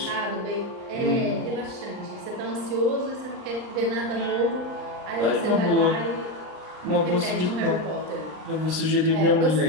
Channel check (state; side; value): late; left; 39 ms